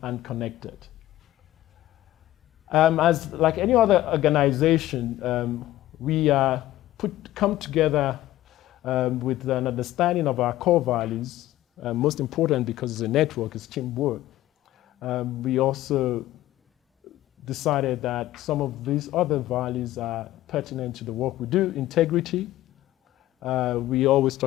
connected. As like any other organization, we come together with an understanding of our core values, most important because it's a network, it's teamwork. We also decided that some of these other values are pertinent to the work we do. Integrity. We always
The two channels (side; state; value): right; quieter; 15.1 dB